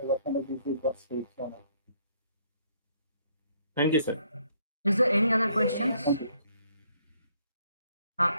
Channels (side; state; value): both; inverted; correlation -0.67